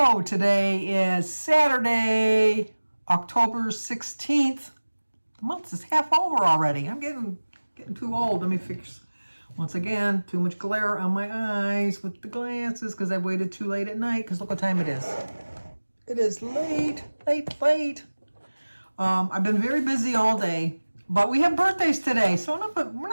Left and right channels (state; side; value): inverted; both; correlation -1.00